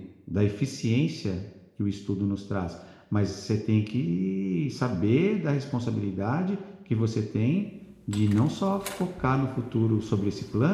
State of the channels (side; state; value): both; identical; correlation 1.00